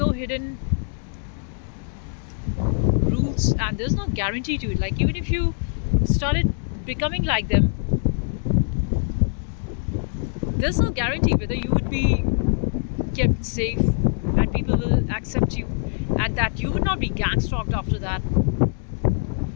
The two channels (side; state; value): right; silent; digital silence